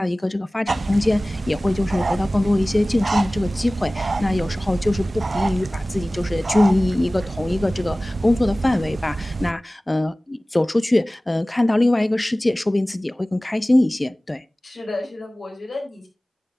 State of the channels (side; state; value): both; normal; correlation 0.98